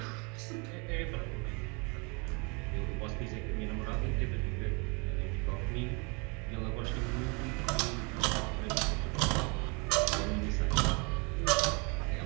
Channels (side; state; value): left; quieter; 31.5 dB